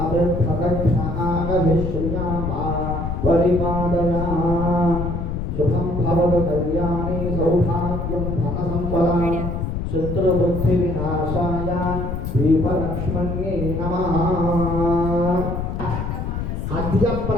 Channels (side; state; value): left; noise; rumble, 3 dB below the sound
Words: अभिप्रदक्षिणागभिश्रियामा परिपादया शुभं भवतु कल्याणे सौभाग्यं धनसम्पदा शत्रुबुद्धिविनाशाय दीपलक्ष्मण्ये नमः। अद्य